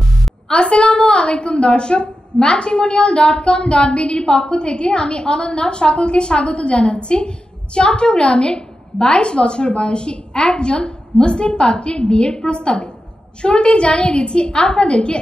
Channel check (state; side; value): normal; both; correlation 0.91